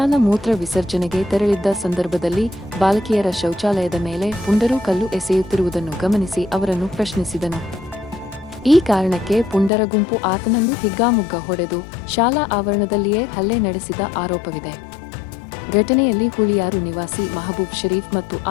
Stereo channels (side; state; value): right; drops out; at 9.7 s